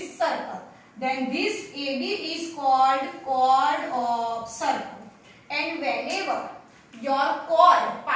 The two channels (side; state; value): both; identical; correlation 1.00